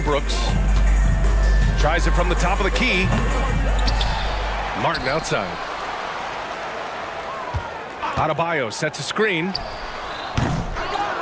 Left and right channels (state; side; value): identical; both; correlation 1.00